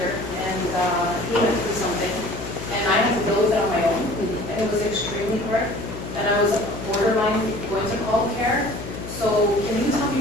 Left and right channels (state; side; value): noise; left; hum, 10 dB below the sound